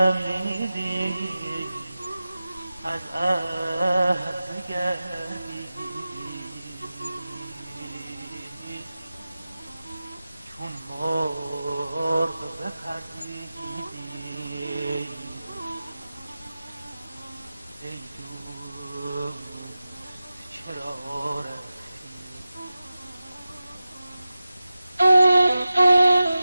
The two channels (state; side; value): inverted; both; correlation -0.94